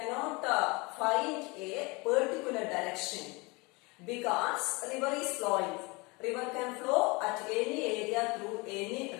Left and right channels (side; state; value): right; quieter; 26.5 dB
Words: find a particular direction because river is flowing. River can flow at any area through any